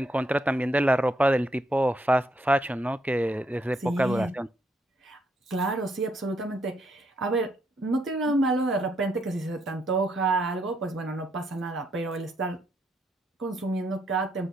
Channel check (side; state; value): both; normal; correlation 0.75